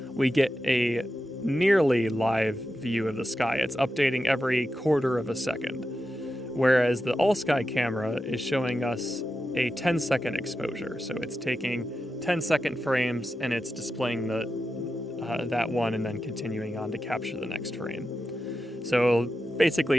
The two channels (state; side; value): normal; both; correlation 0.90